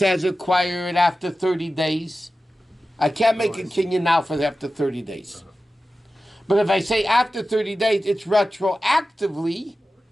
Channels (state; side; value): normal; both; correlation 0.94